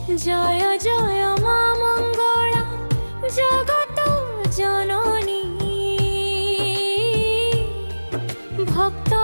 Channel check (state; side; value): inverted; both; correlation -1.00